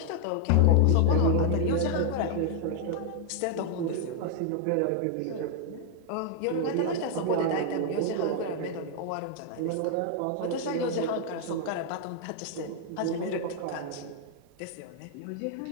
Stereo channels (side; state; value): both; different; correlation 0.00